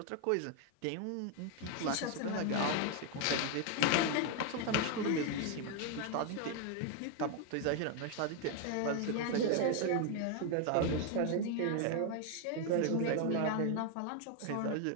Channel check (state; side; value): different; both; correlation 0.01